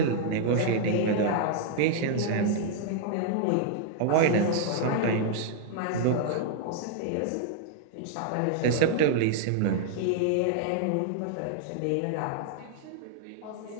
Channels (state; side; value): different; both; correlation -0.01